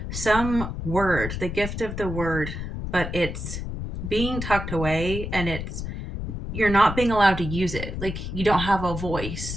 some word, the gift of the word, but it's being tucked away, and you're not being allowed to use it. Like, you don't have a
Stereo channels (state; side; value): noise; left; rumble, 6 dB below the sound